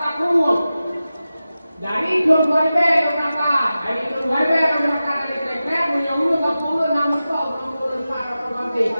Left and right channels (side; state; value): both; inverted; correlation -0.94